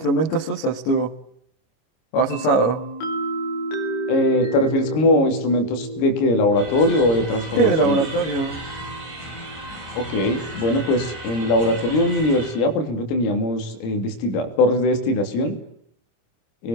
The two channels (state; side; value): late; right; 26 ms